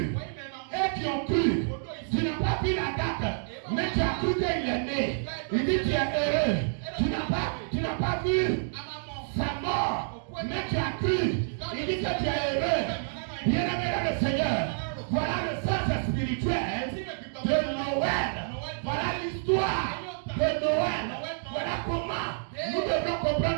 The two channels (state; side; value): silent; left; digital silence